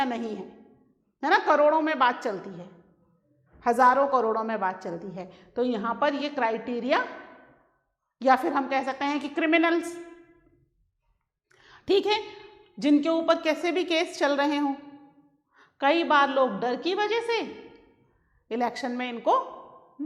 नहीं है ना? करोड़ों में बात चलती है, हजारों करोड़ों में बात चलती है। तो यहाँ पर ये क्राइटेरिया, या फिर हम कह सकते हैं कि क्रिमिनल्स, ठीक है, जिनके ऊपर कैसे भी केस चल रहे हों, कई बार लोग डर की वजह से इलेक्शन में इनको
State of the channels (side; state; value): both; identical; correlation 1.00